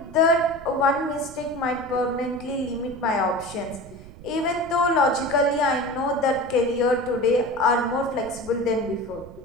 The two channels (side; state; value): right; noise; rumble, 17 dB below the sound